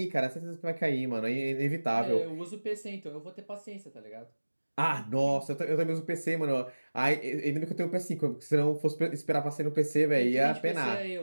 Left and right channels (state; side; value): inverted; both; correlation -1.00